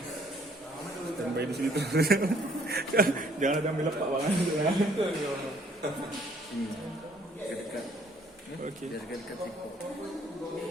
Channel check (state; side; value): normal; both; correlation 0.61